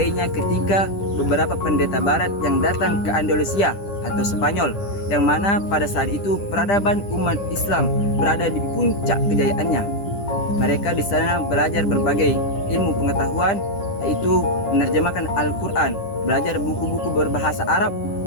ketika beberapa pendeta barat yang datang ke Andalusia atau Spanyol, yang mana pada saat itu peradaban umat Islam berada di puncak kejayaannya. Mereka di sana belajar berbagai ilmu pengetahuan, yaitu menerjemahkan Al-Quran, belajar buku-buku berbahasa Arab,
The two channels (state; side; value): late; right; 10 ms